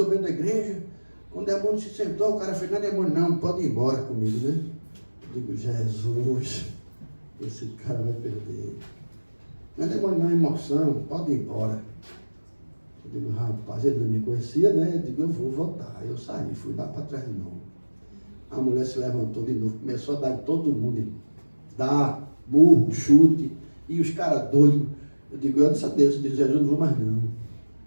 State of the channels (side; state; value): both; inverted; correlation -1.00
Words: da igreja. Quando o demônio se sentou, o cara fez, não é demônio não, pode ir embora comigo, né? Eu digo, Jesus, esse cara vai perder. Não é demônio não, é emoção, pode ir embora. Eu digo, rapaz, ele não me conhecia, né? Eu digo, eu vou voltar. Aí eu saí, fui lá para trás de novo. A mulher se levantou de novo, começou a dar em todo mundo. Dar, murro, chute. E os caras doidos. Eu digo, eu disse a Deus, eu disse, Jesus, não vou mais não.